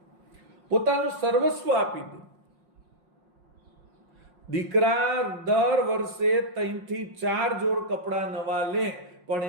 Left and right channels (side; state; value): left; late; 5.6 ms